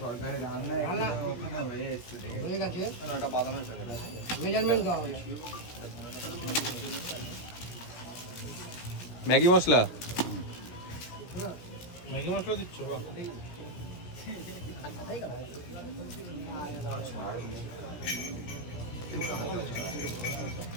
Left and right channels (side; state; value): right; late; 17 ms